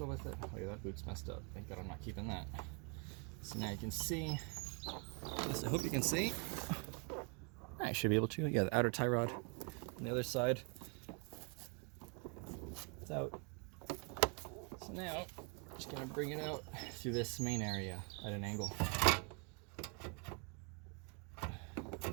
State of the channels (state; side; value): quieter; left; 35.5 dB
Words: with it. Oh yeah, that boot's messed up. Thank God I'm not keeping that. So now you can see, at least I hope you can see, I should be able to. Yeah, the outer tie rod on the other side. It's out. So now, I'm just gonna bring it out through this main area at an angle.